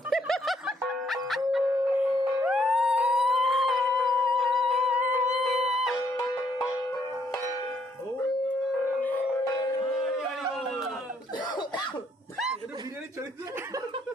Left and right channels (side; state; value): both; normal; correlation 0.71